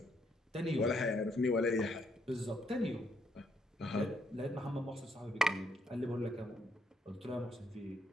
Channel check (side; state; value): both; normal; correlation 0.73